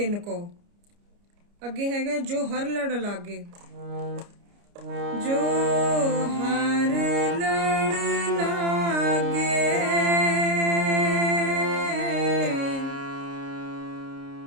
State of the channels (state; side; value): late; left; 29 ms